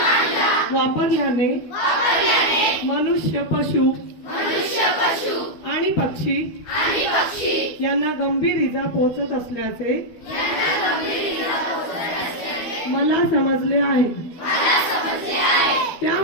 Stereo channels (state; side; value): late; right; 12 ms